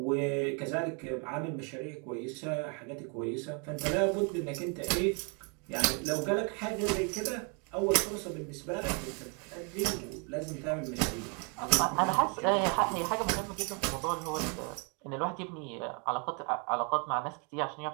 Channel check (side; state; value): left; quieter; 35.7 dB